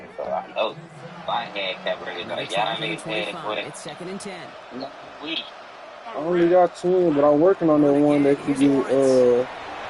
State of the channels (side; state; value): both; identical; correlation 1.00